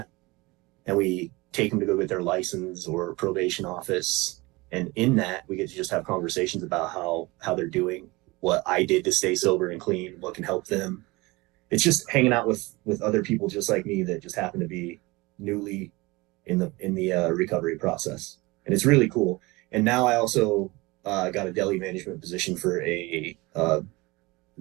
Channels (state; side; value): quieter; left; 23.1 dB